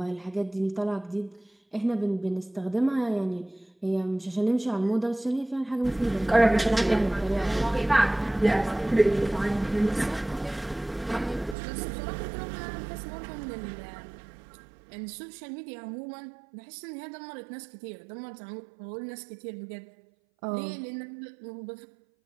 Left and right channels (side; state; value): left; drops out; at 11.6 s